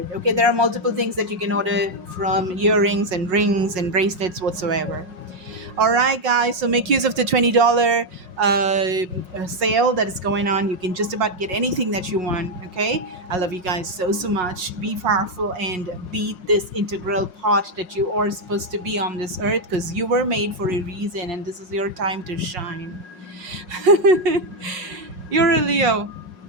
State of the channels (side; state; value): left; late; 5.5 ms